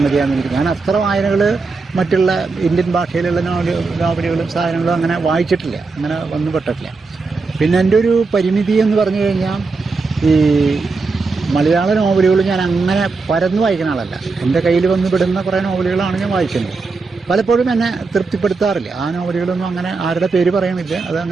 എനിക്ക്. ഞാൻ അത്ര വായനകൾ മറ്റുള്ള ഇന്ത്യൻ ഭാഷയിലുള്ള നോവലുകളും സാധനങ്ങളും അങ്ങനെ വായിച്ചിട്ടില്ല, അങ്ങനെ വന്നുപെട്ടിട്ടില്ല. പിന്നെ എൻ്റെ ഒരു പരിമിതി എന്ന് പറഞ്ഞു കഴിഞ്ഞാൽ ഈ മലയാള നോവലുകൾ ഞാൻ അങ്ങനെ പരന്ന് വായിക്കുന്ന ആളല്ല. എൻ്റെ കയ്യിൽ വന്ന് പെടുന്ന കുറേ നോവലുകളാണ് ഞാൻ വായിക്കുന്നത്. പലപ്പോഴും എന്നെ തൃപ്തിപ്പെടുത്താറില്ല. ആ നോവലുകളൊന്നും അങ്ങനെ ആരുടെ പേര് പറയുന്നില്ല,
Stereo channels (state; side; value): quieter; left; 4.1 dB